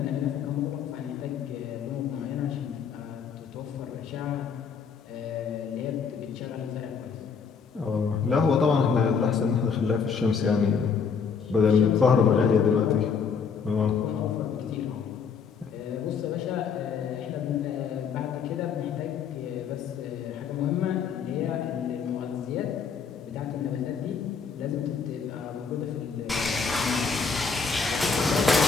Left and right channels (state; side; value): quieter; right; 6.0 dB